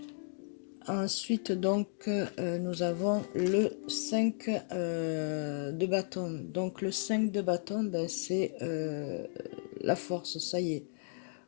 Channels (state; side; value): silent; right; digital silence